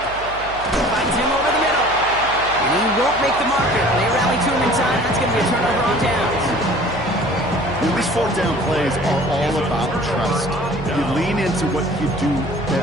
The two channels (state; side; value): noise; right; hum, 16 dB below the sound